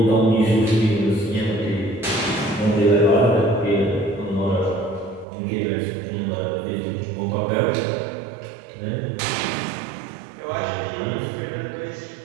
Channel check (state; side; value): drops out; left; at 5.2 s